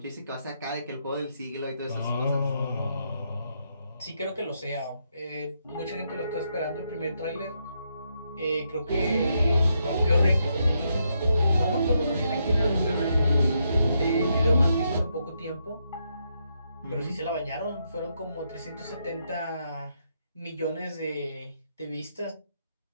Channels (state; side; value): inverted; both; correlation -0.79